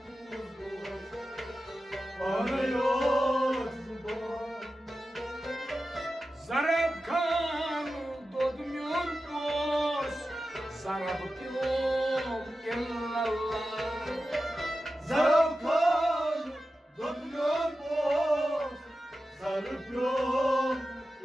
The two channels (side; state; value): both; normal; correlation 0.93